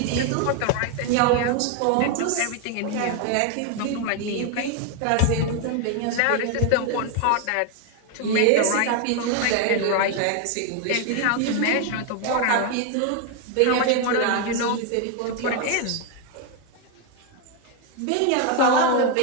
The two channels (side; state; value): both; different; correlation 0.01